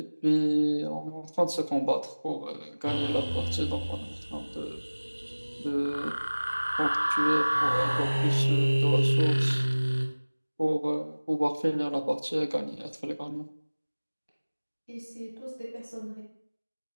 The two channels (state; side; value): inverted; both; correlation -1.00